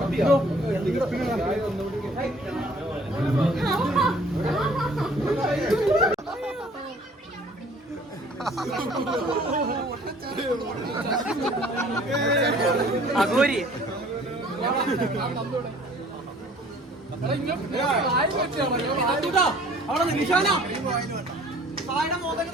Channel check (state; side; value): normal; both; correlation 0.54